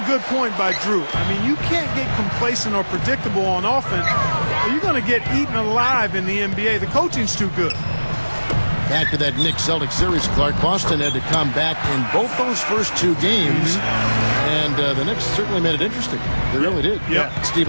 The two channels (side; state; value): both; inverted; correlation -1.00